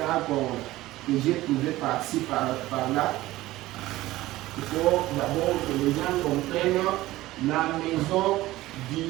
que j'ai trouvé par-ci, par-là, il faut d'abord que les gens comprennent la maison du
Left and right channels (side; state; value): left; quieter; 17.0 dB